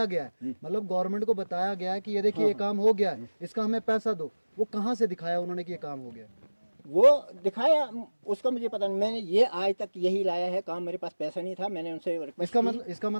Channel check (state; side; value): inverted; both; correlation -1.00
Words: गया है, मतलब गवर्नमेंट को बताया गया है कि ये देखिए ये काम हो गया है, इसका हमें पैसा दो। वो कहाँ से दिखाया उन्होंने कि ये काम हो गया? वो दिखाया, उसका मुझे पता नहीं। मैंने ये आज तक यही लाया है काम, मेरे पास पैसा नहीं था, मैंने उनसे रिक्वेस्ट इसका